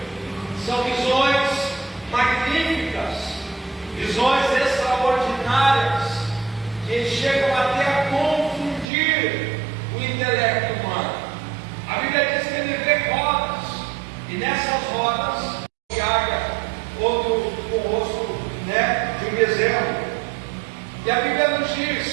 são visões magníficas, visões extraordinárias, que chegam até a confundir o intelecto humano. A Bíblia diz que ele vê rodas, e nessas rodas, de águia, outro com o rosto, de um bezerro. E a Bíblia nos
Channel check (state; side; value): drops out; left; at 8.8 s